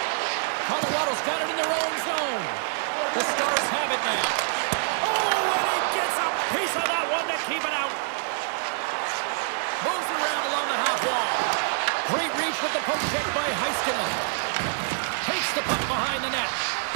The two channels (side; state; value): left; silent; digital silence